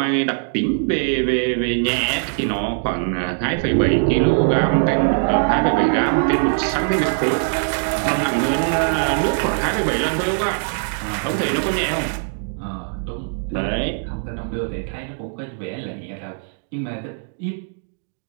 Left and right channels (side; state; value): left; silent; digital silence